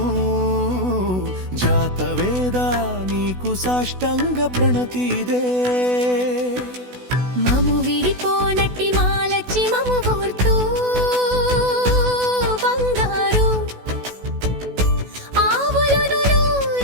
జాతవేద నీకు సాష్టంగ ప్రణతిదే మము విడిపోనట్టి మాలచ్చి మము కోర్తూ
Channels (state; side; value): late; left; 16 ms